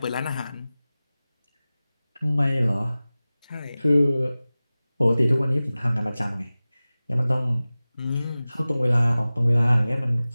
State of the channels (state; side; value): inverted; both; correlation -0.97